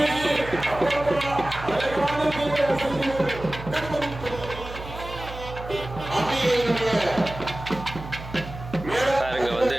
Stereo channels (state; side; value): noise; right; hum, 12 dB below the sound